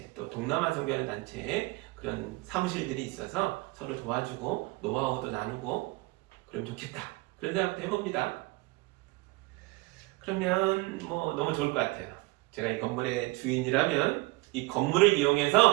또 동남아 선교하는 단체에 그런 사무실들이 있어서 서로 도와주고 노하우도 나누고 그러면 좋겠다. 그런 생각도 해봅니다. 그러면 너무 좋을 것 같아요. 제가 이 건물의 주인이라면 이 건물을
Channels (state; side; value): quieter; left; 23.5 dB